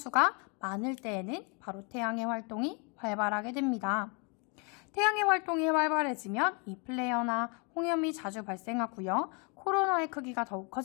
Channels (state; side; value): quieter; right; 34.3 dB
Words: 많을 때에는 바로 태양의 활동이 활발하게 됩니다. 태양의 활동이 활발해지면 이 플레어나 홍염이 자주 발생하고요. 코로나의 크기가 더욱